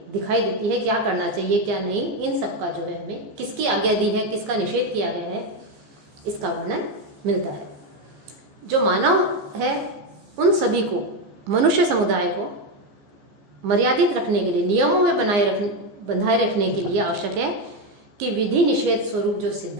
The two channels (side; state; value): left; late; 15 ms